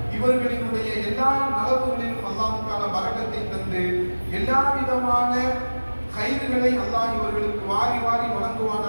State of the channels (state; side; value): inverted; both; correlation -1.00